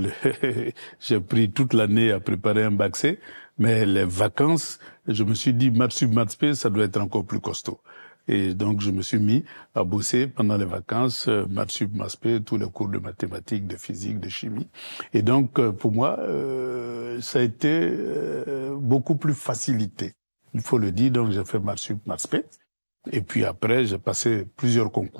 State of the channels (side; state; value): both; inverted; correlation -1.00